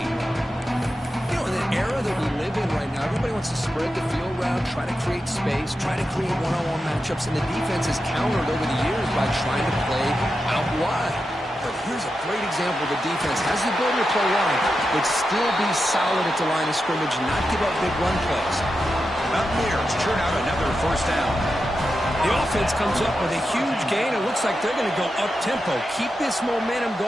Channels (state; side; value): normal; both; correlation 0.89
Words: You know, in the era that we live in right now, everybody wants to spread the field around, try to create space, try to create one-on-one matchups, and the defense has countered over the years by trying to play out wide. But here's a great example. The defense has the ability to play wide, but still be solid at the line of scrimmage and not give up big run plays. Mountaineers churn out another 1st down. The offense comes up with a huge gain. It looks like they're going to go up-tempo. Keep this momentum